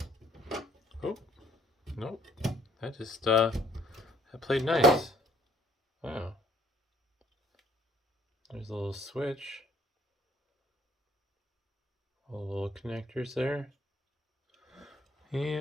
Oh, nope. That just, that played nice. Wow. There's a little switch. All the little connectors there.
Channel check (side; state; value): both; normal; correlation 0.62